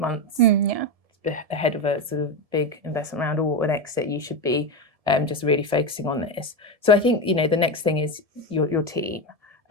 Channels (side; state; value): left; late; 1.7 ms